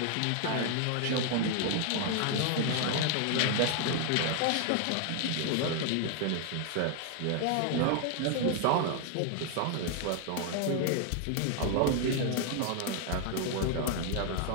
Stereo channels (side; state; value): both; different; correlation 0.00